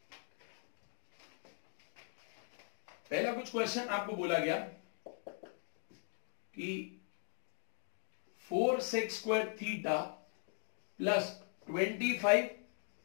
पहला कुछ क्वेश्चन आपको बोला गया कि 4 sec square theta plus 25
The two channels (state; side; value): silent; right; digital silence